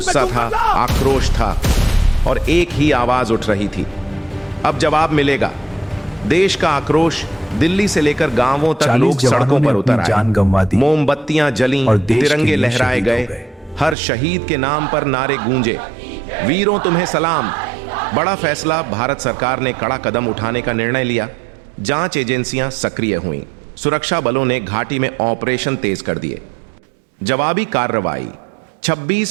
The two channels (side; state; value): left; drops out; at 14.0 s